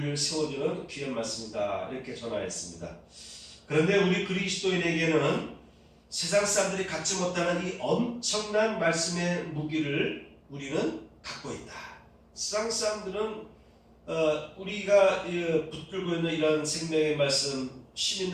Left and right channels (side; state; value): both; identical; correlation 1.00